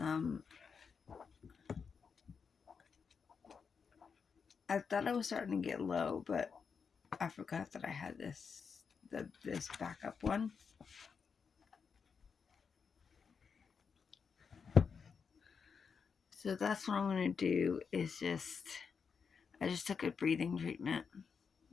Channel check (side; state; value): right; quieter; 5.9 dB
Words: I thought I was starting to get low, but I forgot that I had this backup one. So that's what I'm gonna do is I just took a breathing treatment.